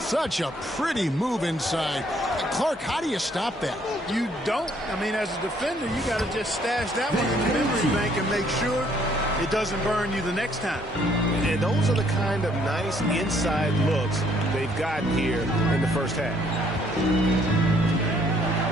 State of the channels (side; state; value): both; normal; correlation 0.65